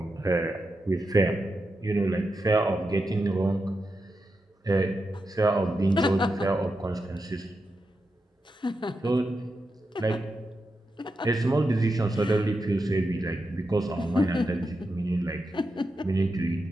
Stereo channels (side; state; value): both; normal; correlation 0.88